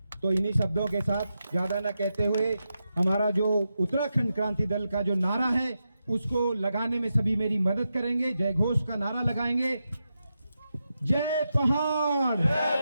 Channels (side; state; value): both; inverted; correlation -0.88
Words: तो इन्हीं शब्दों के साथ ज्यादा न कहते हुए हमारा जो उत्तराखंड क्रांति दल का जो नारा है उसको लगाने में सभी मेरी मदद करेंगे। जय घोष का नारा लगाएंगे। जय पहाड़,